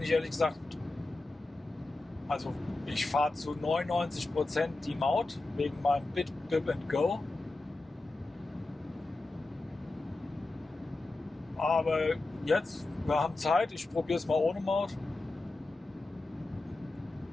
ich ehrlich gesagt, also ich fahre zu 99% die Maut wegen meinem Bip and Go. Aber jetzt, wir haben Zeit, ich probiere es mal ohne Maut.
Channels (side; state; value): right; quieter; 3.0 dB